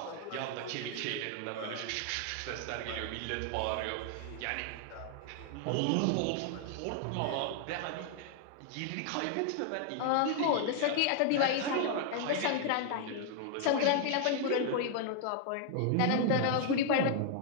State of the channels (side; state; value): both; different; correlation 0.00